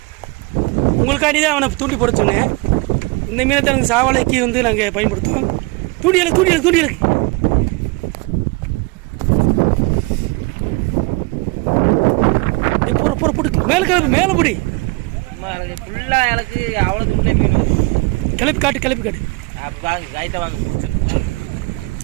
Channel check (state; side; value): quieter; left; 25.9 dB